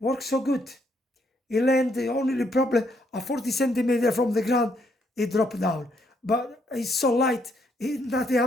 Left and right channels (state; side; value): normal; both; correlation 0.73